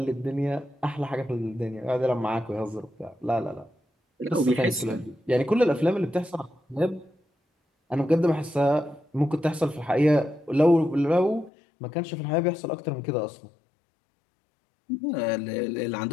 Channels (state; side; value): drops out; right; at 11.5 s